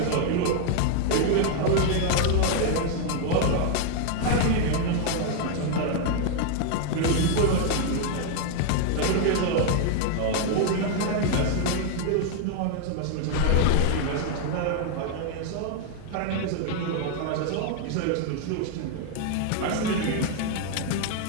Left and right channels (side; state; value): both; different; correlation 0.00